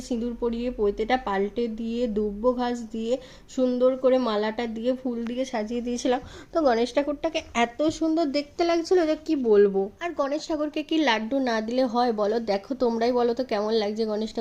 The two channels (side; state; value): both; identical; correlation 1.00